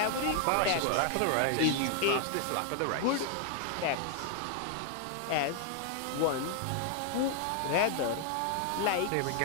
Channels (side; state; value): both; different; correlation 0.00